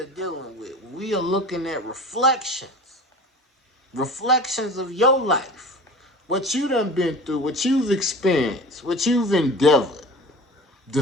dealing with. We are looking at reflections of your life, what you done been through, what you've experienced, what you've endeavored, the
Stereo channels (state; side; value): normal; both; correlation 0.38